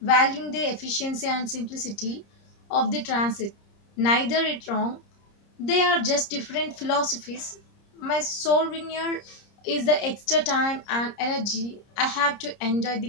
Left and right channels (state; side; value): late; right; 30 ms